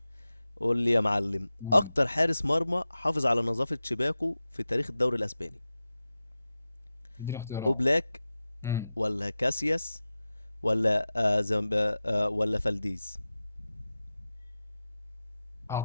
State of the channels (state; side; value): inverted; both; correlation -0.94